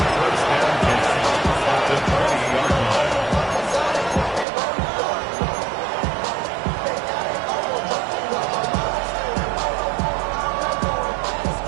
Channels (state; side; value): drops out; left; at 4.5 s